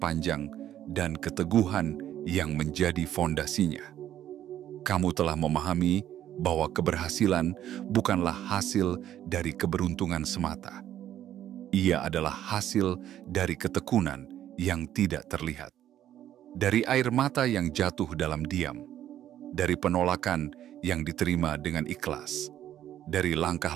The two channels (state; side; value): quieter; left; 11.5 dB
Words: dan keteguhan yang menjadi fondasinya. Kamu telah memahami bahwa keberhasilan bukanlah hasil dari keberuntungan semata. Ia adalah hasil dari ketekunan yang tidak terlihat. Dari air mata yang jatuh dalam diam, dari penolakan yang diterima dengan ikhlas, dari